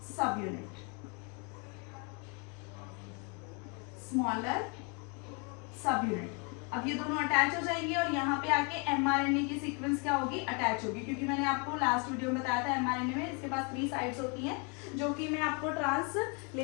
सब यूनिट, स्मॉलर सब यूनिट. अब ये दोनों अटैच हो जाएंगे और यहाँ पे आके mRNA की सीक्वेंस क्या होगी, अटैच होगी. क्योंकि मैंने आपको लास्ट वीडियो में बताया था mRNA में इसके पास 3 साइड्स होती हैं, जो कि मैं आपको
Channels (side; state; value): right; quieter; 34.3 dB